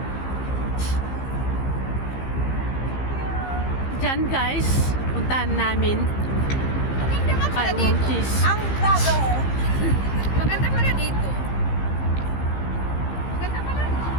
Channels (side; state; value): right; late; 15 ms